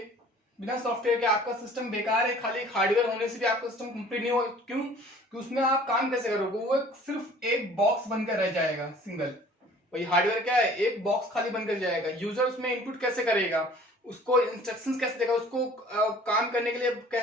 के आपका सिस्टम बेकार है। खाली एक हार्डवेयर होने से भी आपका सिस्टम कंप्लीट नहीं होगा। क्यों? कि उसमें आप काम कैसे करोगे, वो सिर्फ एक बॉक्स बनकर रह जाएगा, सिंगल। वही हार्डवेयर क्या है, एक बॉक्स खाली बनकर जाएगा। यूजर उसमें इनपुट कैसे करेगा, उसको इंस्ट्रक्शंस कैसे देगा, उसको काम करने के लिए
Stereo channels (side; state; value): both; normal; correlation 0.50